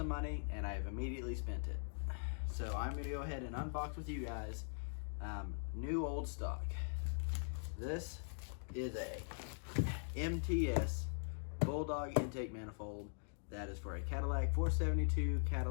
money and I have immediately spent it. So I'm going to go ahead and unbox with you guys new old stock. This is a MTS Bulldog intake manifold that is for a Cadillac 472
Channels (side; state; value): right; silent; digital silence